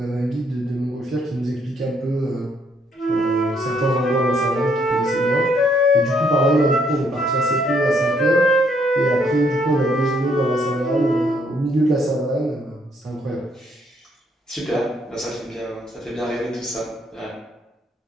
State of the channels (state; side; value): normal; both; correlation 0.70